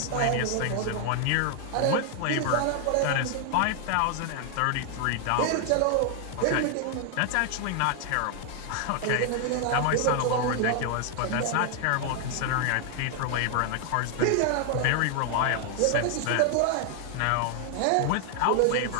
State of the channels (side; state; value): both; different; correlation 0.00